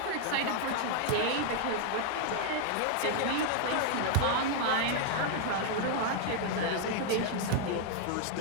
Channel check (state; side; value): different; both; correlation 0.00